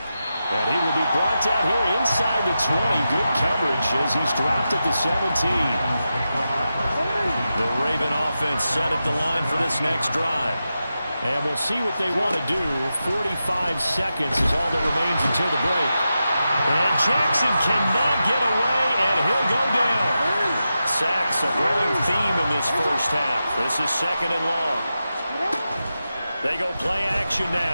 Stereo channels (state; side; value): inverted; both; correlation -0.90